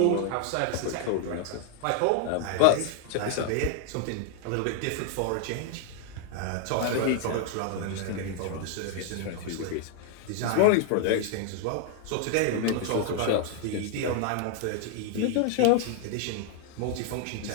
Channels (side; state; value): both; different; correlation 0.00